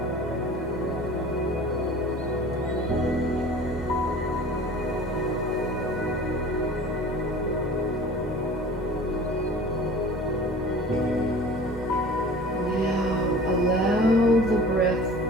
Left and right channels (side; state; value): both; normal; correlation 0.42